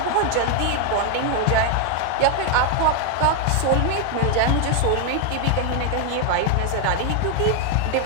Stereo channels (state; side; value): different; both; correlation 0.01